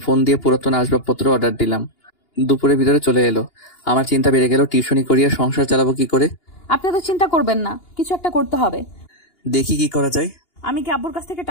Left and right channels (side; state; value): right; late; 2.8 ms